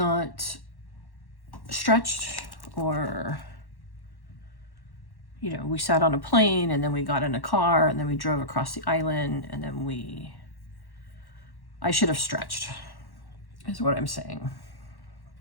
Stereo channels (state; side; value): late; right; 1.1 ms